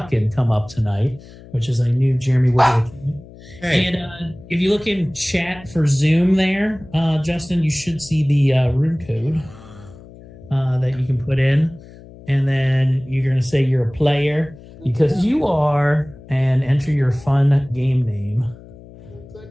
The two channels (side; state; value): left; noise; hum, 20 dB below the sound